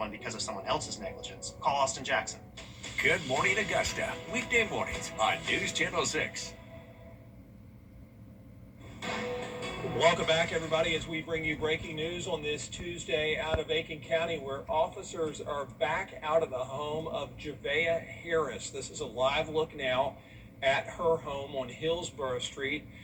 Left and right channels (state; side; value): identical; both; correlation 1.00